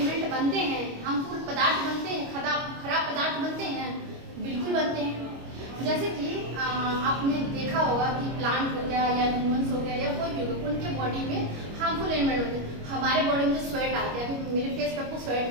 बनते हैं? हार्मफुल पदार्थ बनते हैं? खराब पदार्थ बनते हैं? बिल्कुल बनते हैं। जैसे कि आपने देखा होगा कि प्लांट हो गया या ह्यूमंस हो गया या कोई भी हो, उनके बॉडी में हार्मफुल एलिमेंट होते हैं। हमारे बॉडी में जो स्वेट आते हैं, अभी मेरे फेस पे आपको स्वेट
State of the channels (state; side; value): late; left; 25 ms